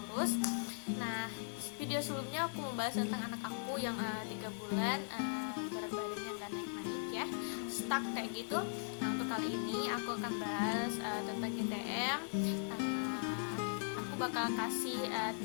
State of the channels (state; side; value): silent; right; digital silence